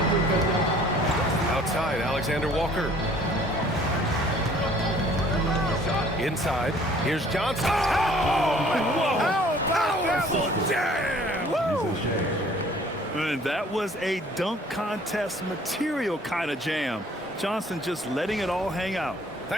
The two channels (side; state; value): both; normal; correlation 0.55